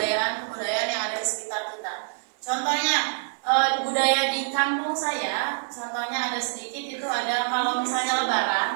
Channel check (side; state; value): left; silent; 61 dB below the other